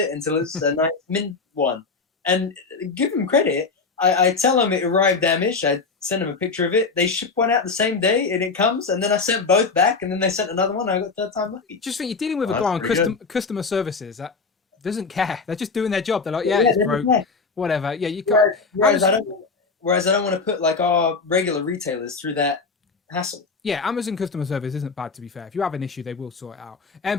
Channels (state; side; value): quieter; right; 4.5 dB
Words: until it's a nice mint one. And give them credit, I tell them it arrived damaged. I send them a picture of it. They ship one out the same day, and it comes. And then I sent both back, and then they sent another one. I got third time lucky. Just think, you're dealing with a guy on customer services that doesn't care. They're just doing their job. They're like, it's broke, whatever. Yeah, you can't. Whereas I don't want to put like our regular retailers through that hassle. Yeah, Amazon customer service isn't bad, to be fair. If you have an issue, they will sort it out.